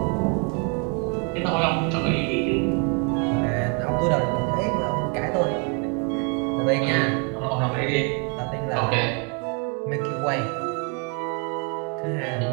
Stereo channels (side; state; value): left; quieter; 35.9 dB